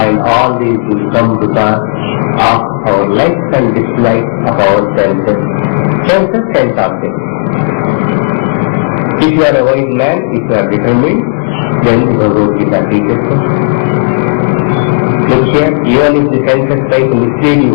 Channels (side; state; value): right; silent; 71 dB below the other